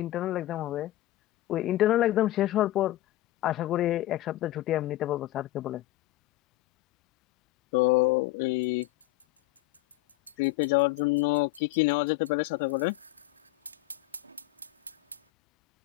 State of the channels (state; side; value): quieter; right; 16.5 dB